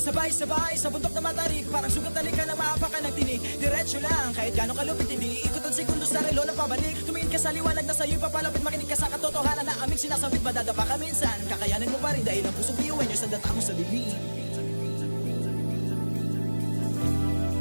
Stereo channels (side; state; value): both; inverted; correlation -1.00